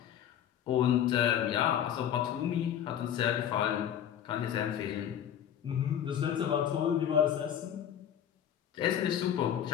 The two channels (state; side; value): quieter; right; 9.9 dB